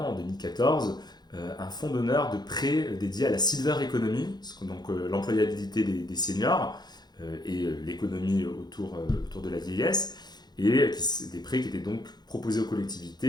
en 2014 un fonds d'honneur de prêt dédié à la silver economy, donc l'employabilité des seniors et l'économie autour de la vieillesse, et des prêts qui étaient donc proposés aux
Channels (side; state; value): right; late; 0.20 ms